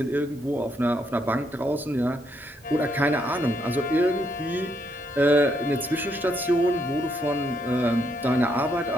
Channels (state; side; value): normal; both; correlation 0.75